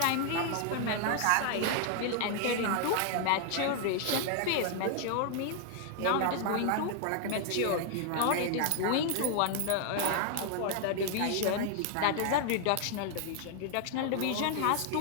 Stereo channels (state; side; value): different; both; correlation 0.00